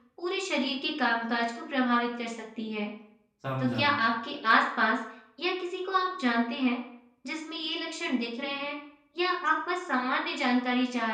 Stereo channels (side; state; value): both; identical; correlation 1.00